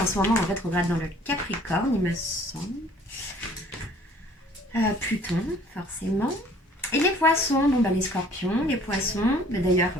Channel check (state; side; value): normal; both; correlation 0.55